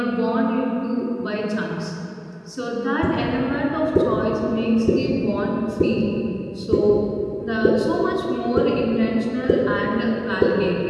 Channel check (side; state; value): both; identical; correlation 1.00